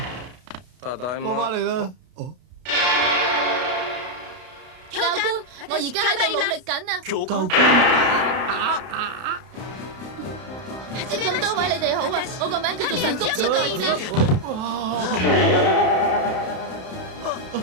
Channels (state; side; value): late; left; 32 ms